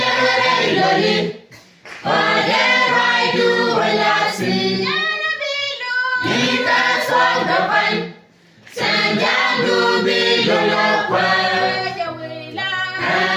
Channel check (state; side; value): identical; both; correlation 1.00